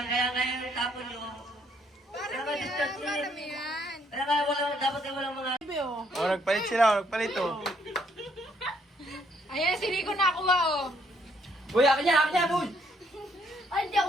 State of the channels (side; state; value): both; normal; correlation 0.69